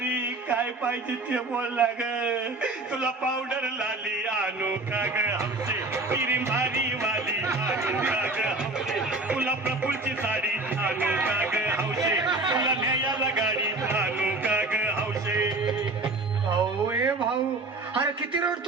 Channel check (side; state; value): left; quieter; 3.1 dB